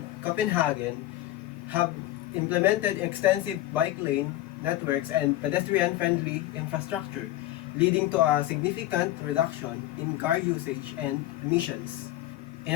Copenhagen have implemented extensive bike lane networks and pedestrian-friendly infrastructure, leading to a significant reduction in car usage and emissions. In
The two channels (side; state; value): right; quieter; 15.0 dB